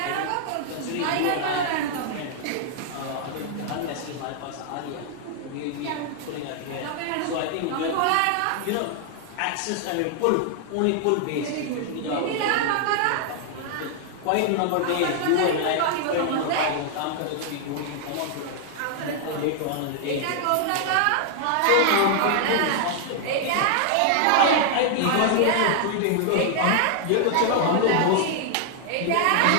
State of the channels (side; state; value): both; different; correlation 0.00